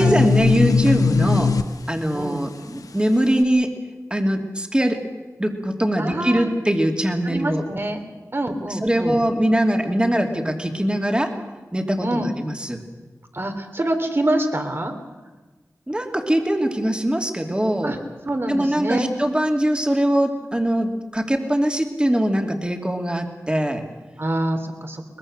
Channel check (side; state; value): both; normal; correlation 0.93